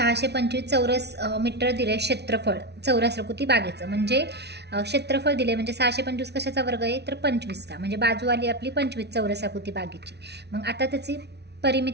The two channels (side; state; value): left; late; 0.49 ms